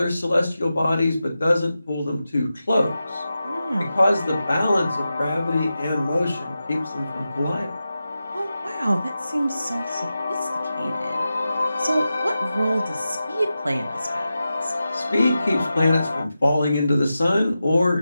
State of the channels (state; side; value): inverted; both; correlation -0.92